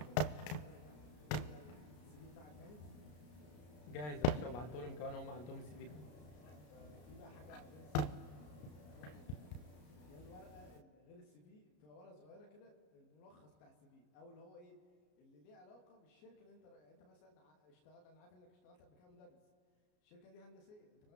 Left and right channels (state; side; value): late; right; 33 ms